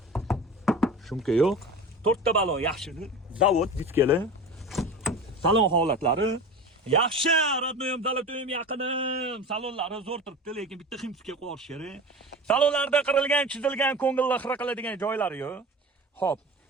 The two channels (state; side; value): normal; both; correlation 0.33